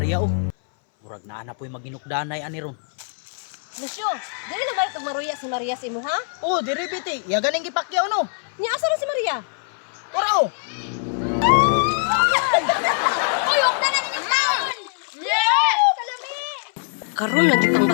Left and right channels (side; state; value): right; silent; 60 dB below the other